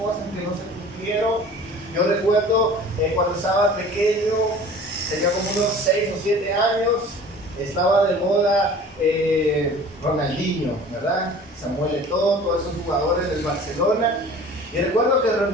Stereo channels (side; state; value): both; normal; correlation 0.44